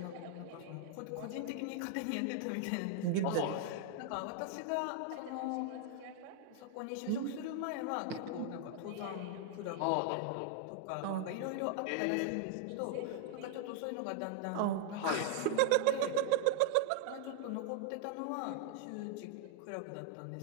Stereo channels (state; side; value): different; both; correlation 0.00